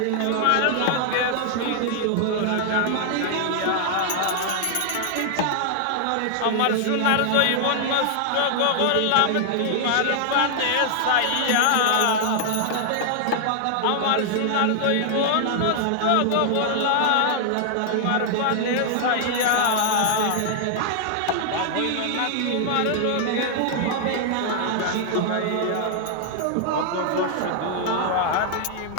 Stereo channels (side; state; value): both; different; correlation 0.00